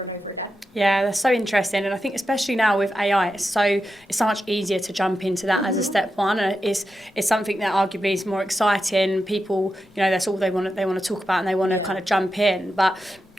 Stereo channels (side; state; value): both; normal; correlation 0.89